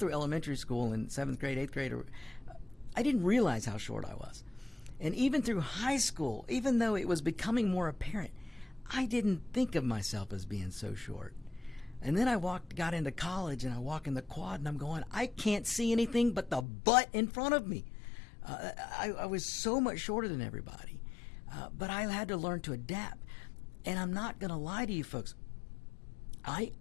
elementary school in 7th grade, 8th grade, I didn't realize how short I was. And even through high school, even though it was becoming more apparent, I didn't think of myself as being so short. And then I got into college, and I walk in the quad, and I'm going, I can't see anything but the butt in front of me. I was so much shorter than everybody. But I had to learn to adapt. And I'm not going to lie to you, folks.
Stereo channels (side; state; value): right; drops out; at 16.7 s